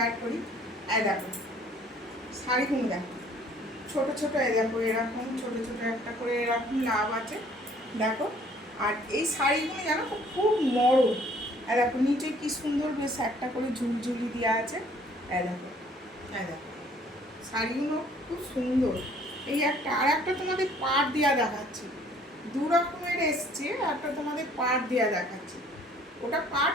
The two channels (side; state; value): both; normal; correlation 0.58